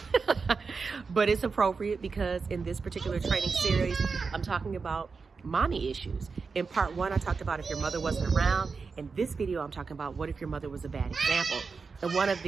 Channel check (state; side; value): quieter; left; 4.8 dB